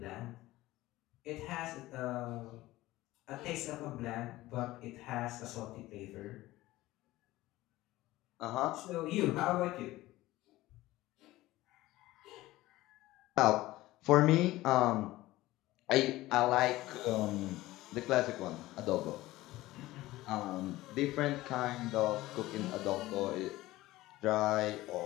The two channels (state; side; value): quieter; right; 17.4 dB